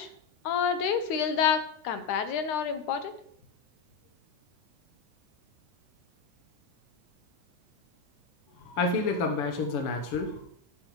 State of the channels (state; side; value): quieter; right; 5.4 dB